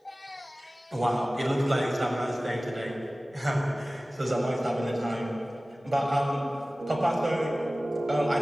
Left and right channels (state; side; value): normal; both; correlation 0.97